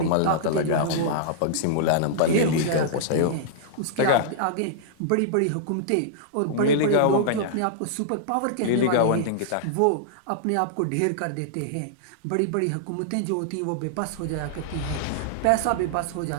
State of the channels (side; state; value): both; different; correlation -0.01